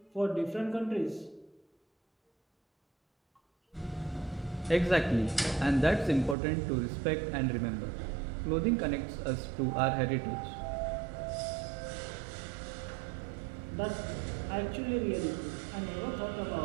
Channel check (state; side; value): drops out; left; at 6.4 s